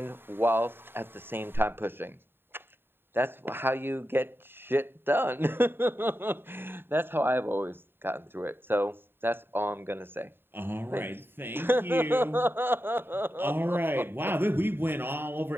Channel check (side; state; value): left; late; 0.11 ms